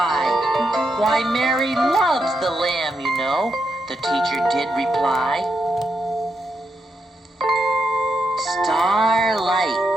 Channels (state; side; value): normal; both; correlation 0.83